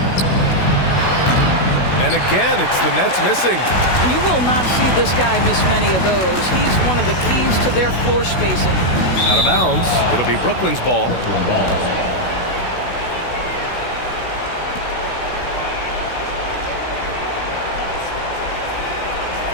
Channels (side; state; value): right; late; 16 ms